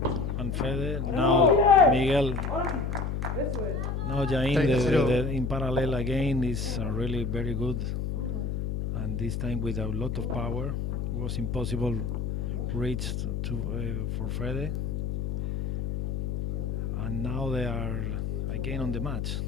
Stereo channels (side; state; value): left; noise; hum, 2 dB below the sound